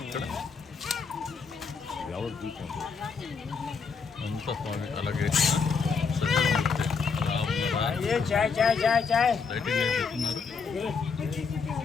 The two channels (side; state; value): right; quieter; 5.3 dB